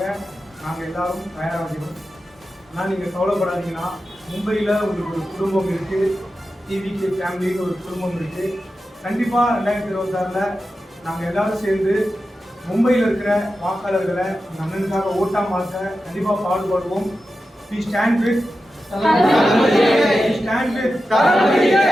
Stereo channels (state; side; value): normal; both; correlation 0.92